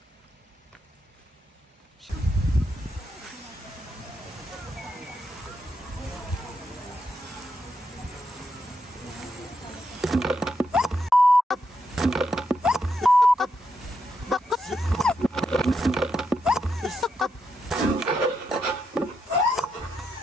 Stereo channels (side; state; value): both; normal; correlation 0.82